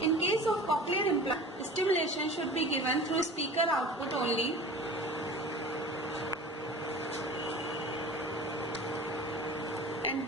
In case of cochlear implant, stimulation should be given through speaker output only. And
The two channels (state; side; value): normal; both; correlation 0.39